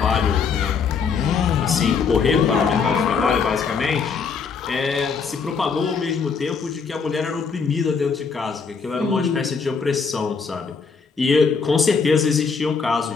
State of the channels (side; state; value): right; quieter; 5.5 dB